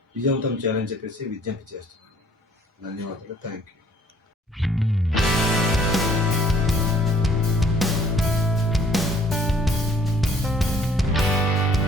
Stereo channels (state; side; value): normal; both; correlation 0.60